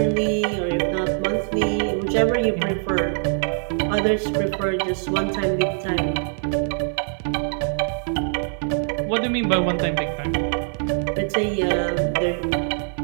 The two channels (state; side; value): silent; left; digital silence